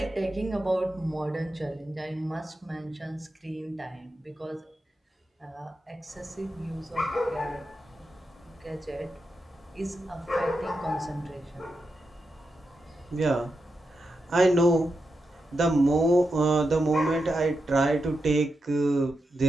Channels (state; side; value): normal; both; correlation 0.87